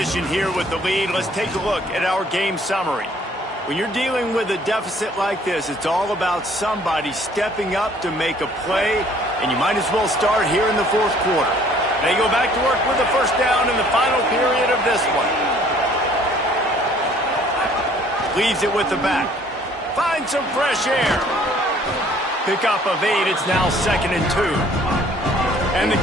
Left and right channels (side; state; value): both; normal; correlation 0.58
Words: here with the lead. Let's take a look at our game summary. When you're dealing with a deficit like this, it's all about somebody stepping up to make a play, and you might as well start here in the 4th quarter. They go back to work with the first down in the final period of this one. Leaves it with the back. Find some fresh air. Pick up of 8. It's now 2nd and 2. And the